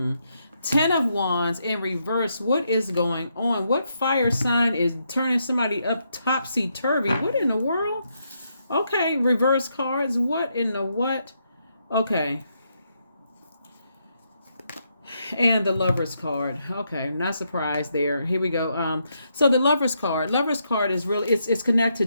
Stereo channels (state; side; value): inverted; both; correlation -0.79